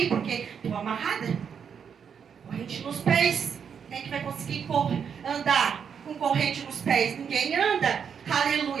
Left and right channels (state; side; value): quieter; left; 7.2 dB